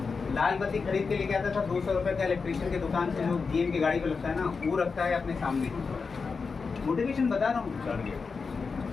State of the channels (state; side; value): quieter; right; 4.9 dB